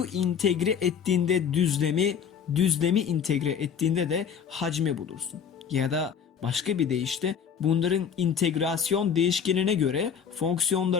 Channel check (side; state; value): right; quieter; 7.4 dB